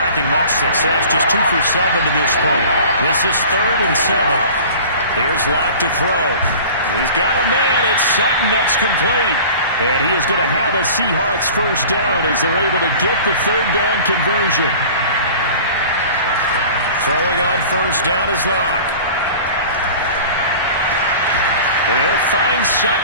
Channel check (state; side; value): inverted; both; correlation -0.41